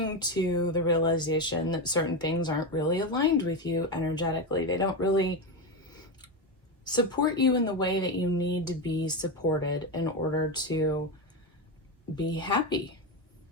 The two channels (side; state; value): both; normal; correlation 0.14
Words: to the realization that certain things aren't really aligned with you energetically. They don't really support you in the way that you need to be supported in order to be happy,